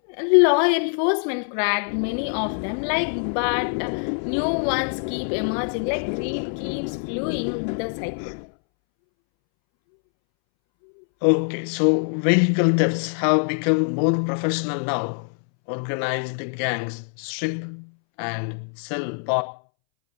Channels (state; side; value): silent; right; 63 dB below the other